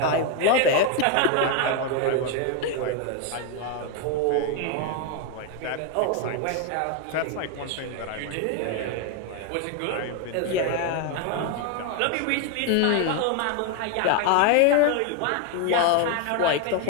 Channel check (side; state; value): both; different; correlation 0.01